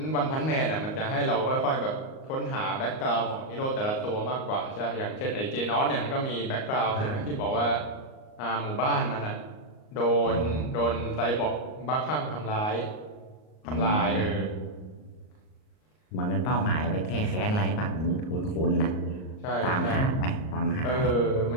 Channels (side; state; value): right; late; 38 ms